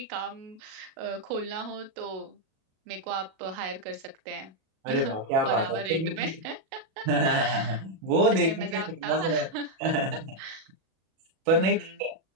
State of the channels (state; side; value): late; left; 37 ms